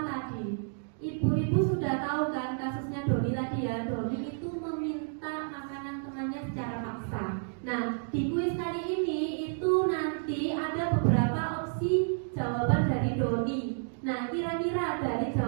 tadi. Ibu-ibu sudah tahu kan kasusnya Doni tadi ya. Doni itu meminta makanan temannya secara paksa. Nah, di kuis kali ini itu nanti ada beberapa opsi jawaban dari Doni. Nah, kira-kira dari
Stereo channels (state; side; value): silent; left; digital silence